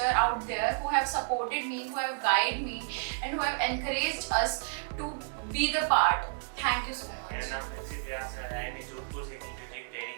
out there who have supported me, who have guided me and who have encouraged us to be the part. Thank you so much. मेरा नाम Prinsep व्यास है, IIM Jodhpur से की music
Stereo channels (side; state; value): left; silent; digital silence